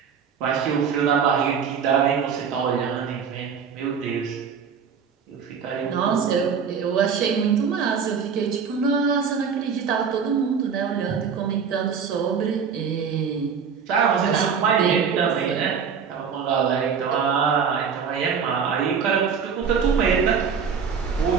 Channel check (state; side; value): quieter; left; 6.6 dB